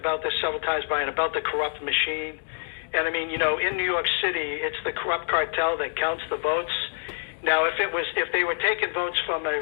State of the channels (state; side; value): silent; right; digital silence